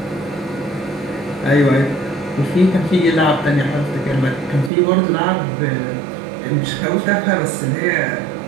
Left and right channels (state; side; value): drops out; left; at 4.7 s